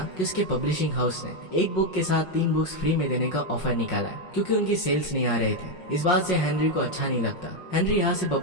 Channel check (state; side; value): late; right; 5.5 ms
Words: कि उसके पब्लिशिंग हाउस ने एक बुक के साथ 3 बुक्स फ्री में देने का ऑफर निकाला है क्योंकि उनकी सेल्स नहीं आ रहे थे। इस बात से हेनरी को अच्छा नहीं लगता। हेनरी यहाँ से